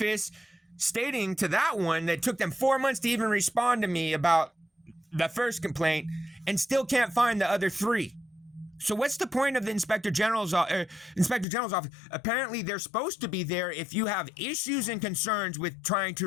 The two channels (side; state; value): right; drops out; at 11.5 s